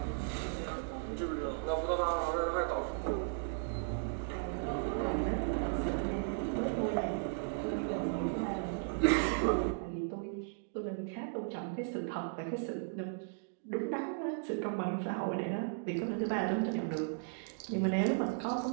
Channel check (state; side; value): silent; left; digital silence